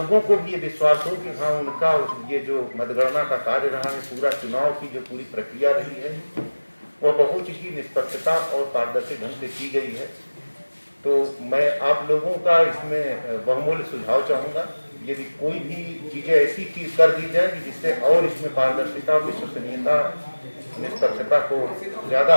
को भी ये विश्वास हो कि हाँ, उनका ये जो मतगणना का कार्य रहा है, पूरा चुनाव की जो पूरी प्रक्रिया रही है, वह बहुत ही निष्पक्षता और पारदर्शी ढंग से की गई है। तो मैं आप लोगों का इसमें बहुमूल्य सुझाव चाहूँगा, यदि कोई भी चीज़ें ऐसी चीज कर दी जाए जिससे और इसमें पारदर्शिता, विश्वसनीयता, निष्पक्षता को ज़्यादा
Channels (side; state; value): both; inverted; correlation -1.00